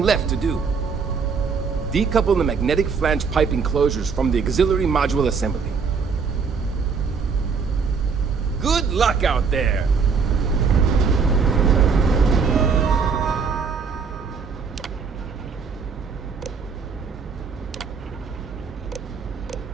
left to do. Decouple the magnetic flange pipe enclosures from the auxiliary module assembly. Good luck out there!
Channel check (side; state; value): left; quieter; 5.5 dB